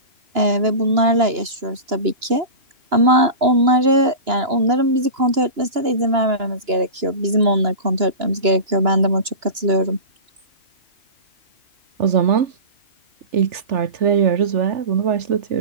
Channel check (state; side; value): late; left; 2.9 ms